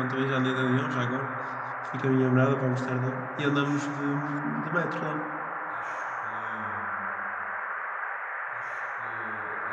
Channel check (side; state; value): both; identical; correlation 1.00